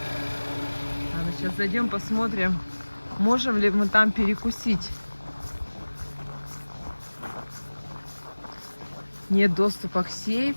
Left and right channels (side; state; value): both; inverted; correlation -1.00